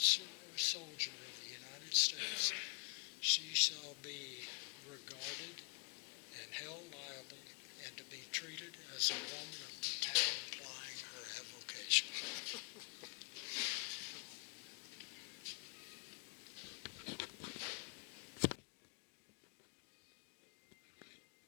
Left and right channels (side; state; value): right; quieter; 38.4 dB